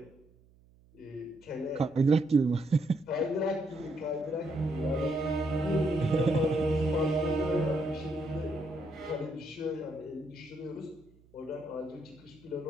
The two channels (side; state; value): right; noise; hum, 29 dB below the sound